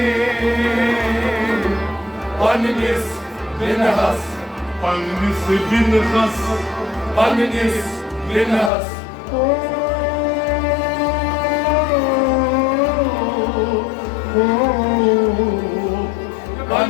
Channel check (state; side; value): drops out; right; at 8.7 s